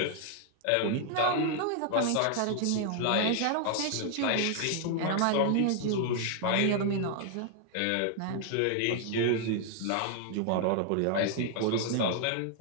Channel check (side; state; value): both; different; correlation 0.00